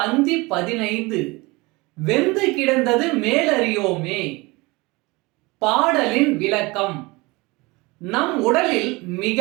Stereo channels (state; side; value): quieter; left; 23.8 dB